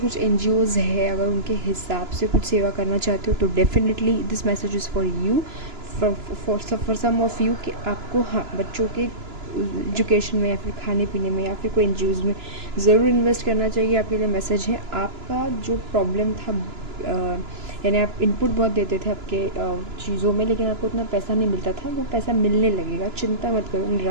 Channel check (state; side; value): late; left; 2.9 ms